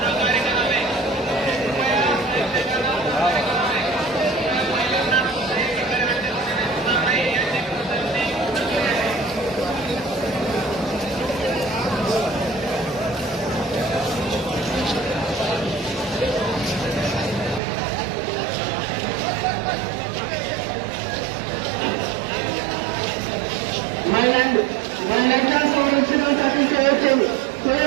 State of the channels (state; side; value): drops out; left; at 17.6 s